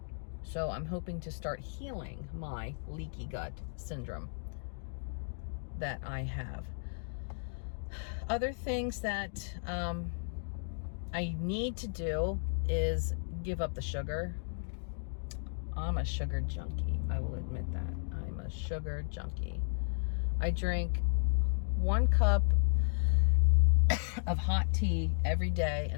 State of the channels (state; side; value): silent; right; digital silence